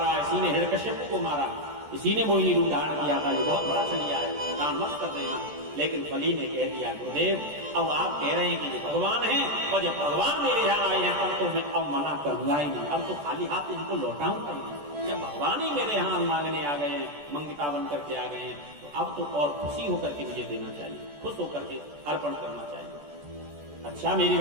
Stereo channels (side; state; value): left; late; 14 ms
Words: इसी ने हिरण्यकश्यप को मारा, इसी ने मोहिनी रूप धारण किया था। ये बहुत बड़ा छलिया है, दान मत कर देना। लेकिन बलि ने कह दिया, गुरुदेव अब आप कह रहे हैं कि ये भगवान हैं, और जब भगवान मेरे यहाँ आए हैं तब तो मैं अब मना करूंगा ही नहीं, अब तो खाली हाथ इनको लौटाऊंगा ही नहीं। जब भगवान ही मेरे यहाँ मांगने आ गए हैं, मंगिता बन करके आ गए हैं, तो अब तो और खुशी होकर के मुझे देना चाहिए, खुश होकर के अर्पण करना चाहिए। अच्छा मेरी